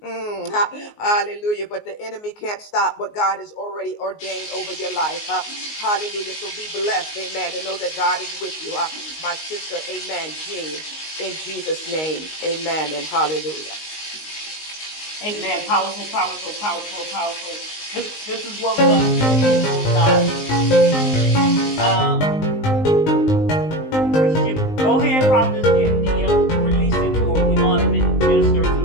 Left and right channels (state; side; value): late; right; 19 ms